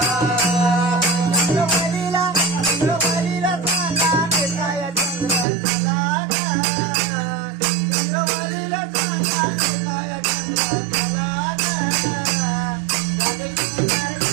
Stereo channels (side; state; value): left; drops out; at 5.5 s